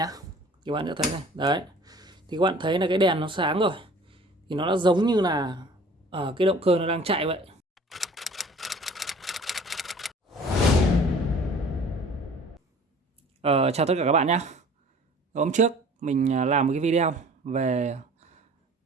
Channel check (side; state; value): both; normal; correlation 0.48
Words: Các bạn sẽ thấy này. Đấy. Thì các bạn thấy là cái đèn nó sáng rồi. Thì nó đã giống như là cái động cơ nó đang chạy vậy. Chào tất cả các bạn nhé. Hôm trước mình làm một cái video về